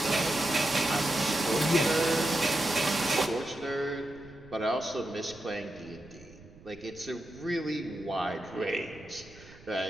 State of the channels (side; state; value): right; noise; rumble, 22 dB below the sound